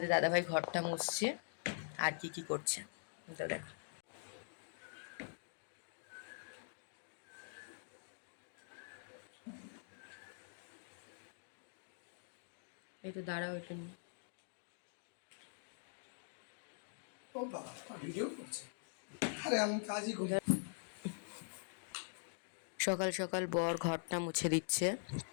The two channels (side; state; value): right; silent; digital silence